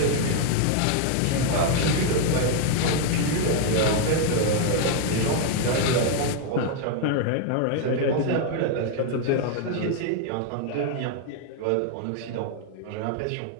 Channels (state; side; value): different; both; correlation 0.01